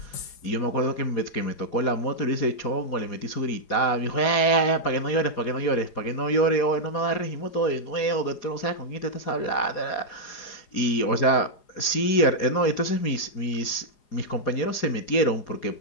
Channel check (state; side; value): late; right; 4.9 ms